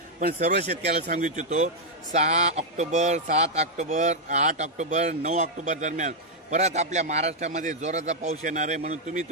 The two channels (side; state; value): both; normal; correlation -0.02